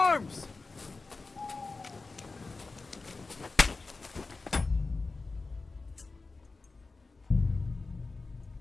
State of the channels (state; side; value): quieter; right; 3.8 dB